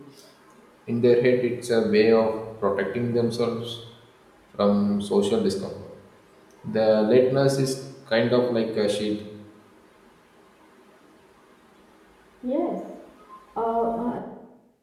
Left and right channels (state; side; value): identical; both; correlation 1.00